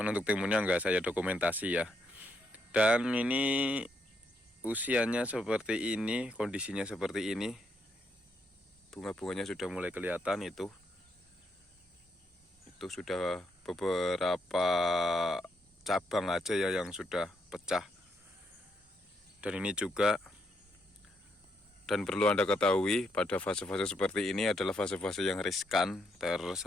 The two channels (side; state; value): both; normal; correlation 0.77